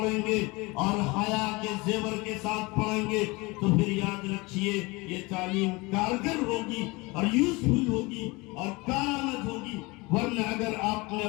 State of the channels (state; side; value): quieter; right; 24.7 dB